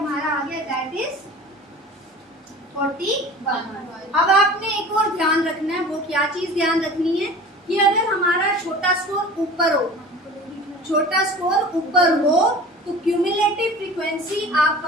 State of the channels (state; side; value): normal; both; correlation 0.40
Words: आ गया दैट इज 41। अब आपने एक और ध्यान रखना है, वो क्या चीज ध्यान रखनी है कि अगर हमारा छोटा स्कोर ऊपर हो, छोटा स्कोर ऊपर हो तो क्यूमुलेटिव फ्रीक्वेंसी आप